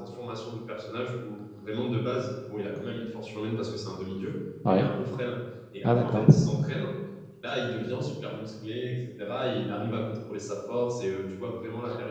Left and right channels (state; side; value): identical; both; correlation 1.00